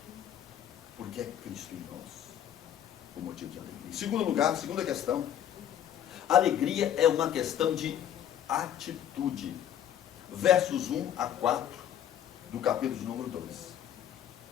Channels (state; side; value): quieter; right; 10.4 dB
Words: Porque é Cristo em nós o motivo de alegria. Em segundo lugar, segunda questão, alegria é uma questão de atitude. Versos 1 a 4 do capítulo de número 2.